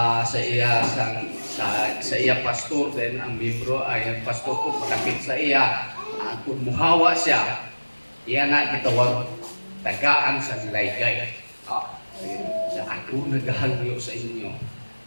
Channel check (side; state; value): both; inverted; correlation -1.00